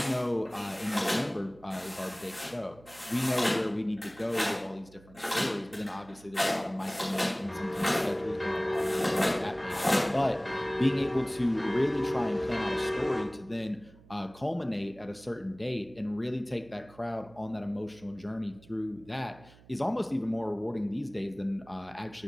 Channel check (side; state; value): right; noise; hum, 24 dB below the sound